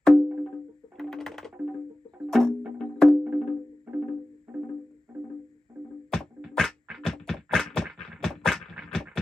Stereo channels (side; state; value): both; normal; correlation 0.96